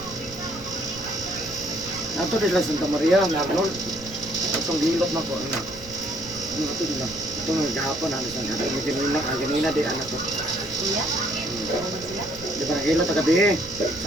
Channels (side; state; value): right; noise; rumble, 17 dB below the sound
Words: Nato nila Santa Maria, Arnold. Itong hilot na ko, anak. Nato nila. Itong gahapon, ano sa natin. Ganina di anak ko. Iya. Di ba hilot na gabi eh.